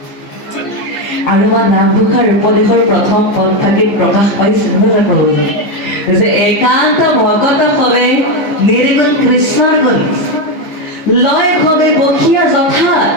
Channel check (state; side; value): late; right; 14 ms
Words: আৰু বা নামঘোষাৰ উপদেশৰ প্ৰথম পদফাঁকিত প্ৰকাশ পাইছে নহয় প্ৰভুজী যে একান্ত ভকত হবে নিৰ্গুণ কৃষ্ণৰ গুণ লয় হবে বসিয়া যথা